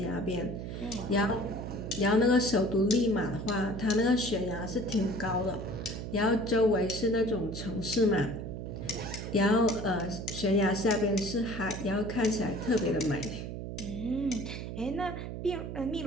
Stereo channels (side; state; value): right; noise; hum, 7 dB below the sound